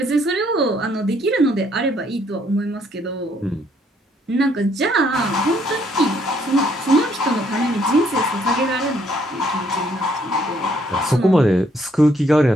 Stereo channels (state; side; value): normal; both; correlation 0.68